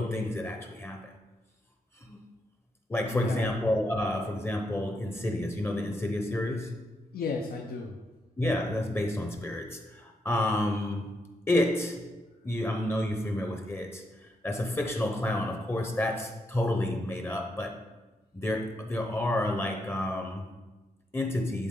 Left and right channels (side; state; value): both; normal; correlation 0.80